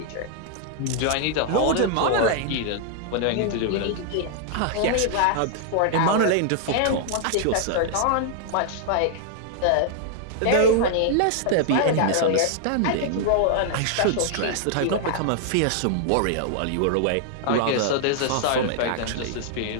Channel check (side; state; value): both; different; correlation 0.00